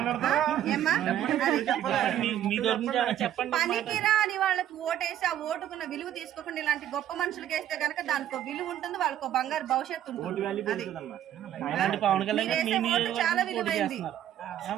పనికిరా అని వాళ్ళకి ఓటేసి ఆ ఓటుకున్న విలువ తీసుకోకుండా ఇలాంటి గొప్ప మనుషులకి వేస్తే కనుక దానికి విలువ ఉంటుంది, వాళ్ళకి బంగారు భవిష్యత్తు ఉంటుంది. చాలా విలువైంది.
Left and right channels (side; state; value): left; quieter; 11.3 dB